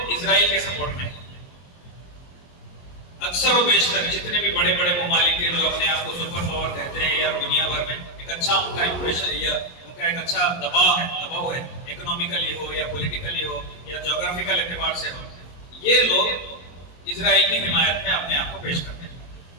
इजराइल के सपोर्ट में हैं। अक्सर और बेशतर जितने भी बड़े बड़े ममालिक हैं जो अपने आप को सुपर पावर कहते हैं या दुनिया भर में एक अच्छा उनका इंप्रेशन या उनका एक अच्छा दबाव है, इकोनॉमिकली हो या पॉलिटिकली हो या ज्योग्राफिकल एतबार से हो, ये लोग इजराइल की हिमायत में अपने आप को पेश करते हैं।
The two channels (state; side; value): late; right; 22 ms